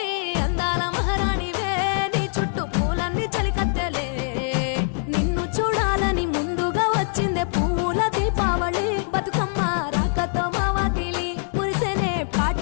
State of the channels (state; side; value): silent; right; 59 dB below the other